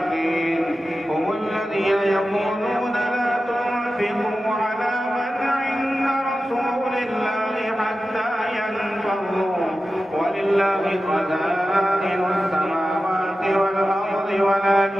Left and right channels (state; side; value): normal; both; correlation 0.93